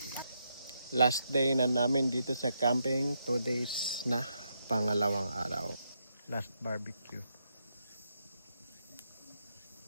Last day na namin dito sa camping. 2 days na. Pangalawang araw. Last barbecue.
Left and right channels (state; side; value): inverted; both; correlation -0.80